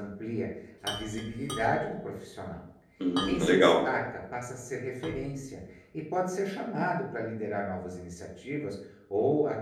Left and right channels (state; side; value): identical; both; correlation 1.00